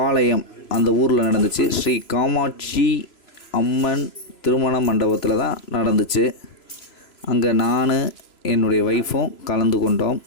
அந்த ஊரில் நடந்துச்சு. ஸ்ரீ காமாட்சி அம்மன் திருமண மண்டபத்தில் தான் நடந்துச்சு. அங்கே நான் என்னுடைய ஒய்ஃபும்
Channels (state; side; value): late; right; 3.0 ms